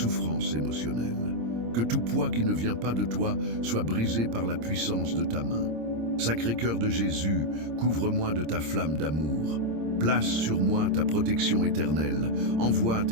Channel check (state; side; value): late; left; 26 ms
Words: émotionnelle. Que tout poids qui ne vient pas de toi soit brisé par la puissance de ta main. Sacré-Cœur de Jésus, couvre-moi de ta flamme d'amour. Place sur moi ta protection éternelle. Envoie